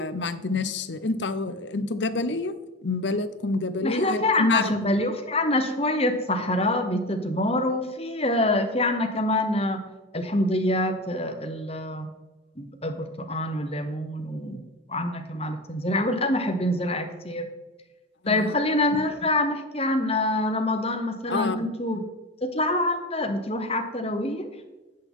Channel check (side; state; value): both; normal; correlation 0.27